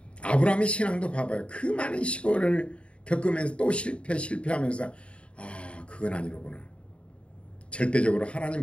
아브라함의 신앙도 봐봐요. 그 많은 시골을 겪으면서 또 실패하면서 아 그건 아니로구나. 절대적으로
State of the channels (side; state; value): right; late; 0.058 ms